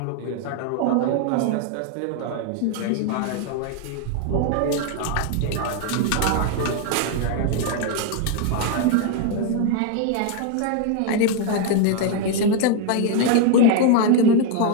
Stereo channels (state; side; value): different; both; correlation 0.01